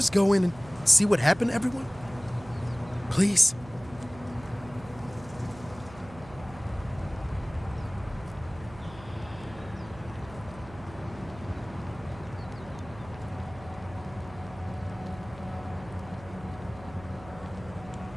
go in and see what happened to everyone? Please?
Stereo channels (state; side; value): noise; right; hum, 18 dB below the sound